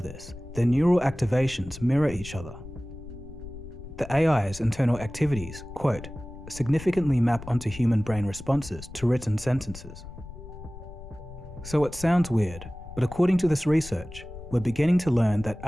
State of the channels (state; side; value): noise; left; rumble, 14 dB below the sound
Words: their neural activations mirror each other. The AI's internal activities, quote, significantly map onto human brain responses to written sentences. So it sounds weird, but according to this research, we're beginning to learn that